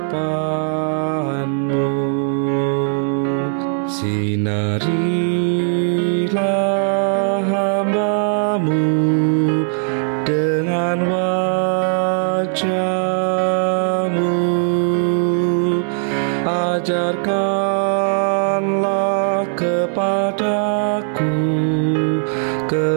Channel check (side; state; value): left; silent; 62 dB below the other